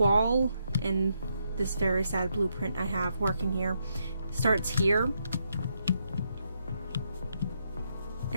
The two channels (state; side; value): inverted; both; correlation -0.80